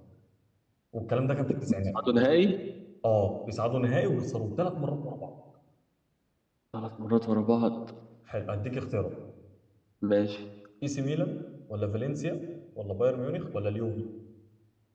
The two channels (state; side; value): identical; both; correlation 1.00